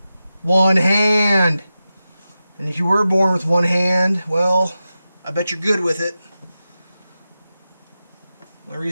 One hand! And if you were born with one hand, well, I bet you're good with it. The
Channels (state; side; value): inverted; both; correlation -0.92